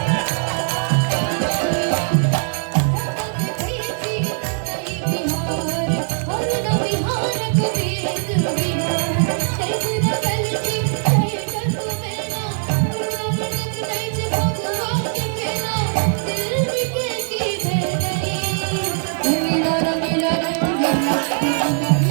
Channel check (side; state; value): left; silent; 60 dB below the other